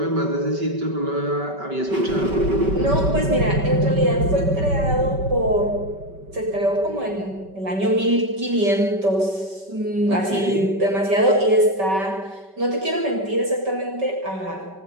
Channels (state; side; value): late; left; 5.2 ms